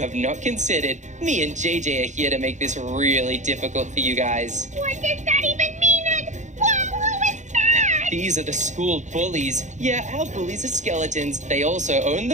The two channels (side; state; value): left; late; 0.35 ms